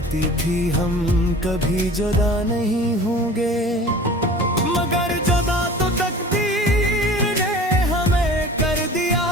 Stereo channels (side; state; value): both; normal; correlation 0.41